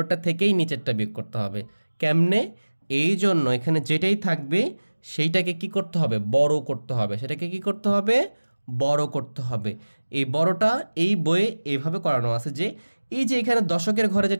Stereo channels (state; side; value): inverted; both; correlation -1.00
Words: থেকেই নিচেরটা বিয়োগ করতে হবে। কেমনে? এই জন্য এখানে যেটাই থাকবে সেইটাকে কি করতে হবে, বড় করতে হবে, সেটাকে কি করতে হবে, বড় করতে হবে। এই বড়টা এই বইয়ে এইভাবে করানো আছে যে এই যে এখানে দশকের ঘরে